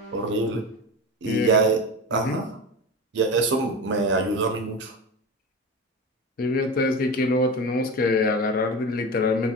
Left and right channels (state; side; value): normal; both; correlation 0.25